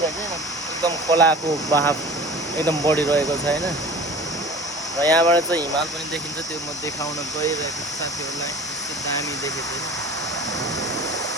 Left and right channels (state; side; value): normal; both; correlation 0.41